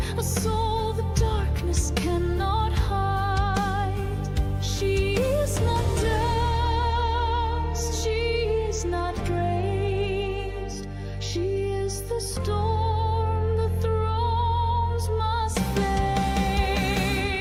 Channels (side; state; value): both; identical; correlation 1.00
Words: a soul the darkness cannot hide. She is not dust, she is not praised. She is the storm the thrones must face.